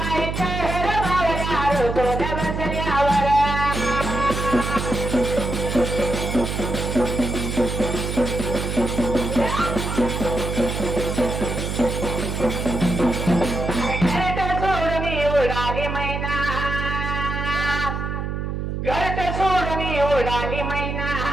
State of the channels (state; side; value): noise; right; hum, 3 dB below the sound